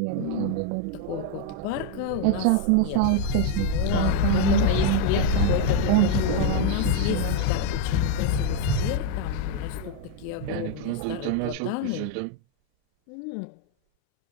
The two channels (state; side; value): different; both; correlation 0.01